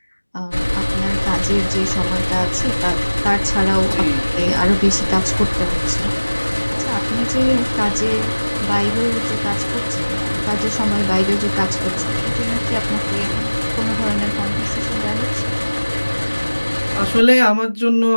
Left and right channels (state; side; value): inverted; both; correlation -1.00